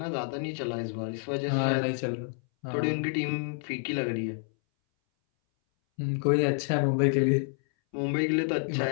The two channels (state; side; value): silent; right; 59 dB below the other